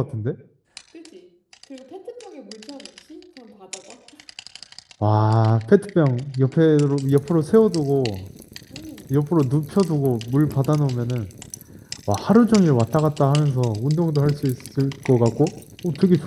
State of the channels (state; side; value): identical; both; correlation 1.00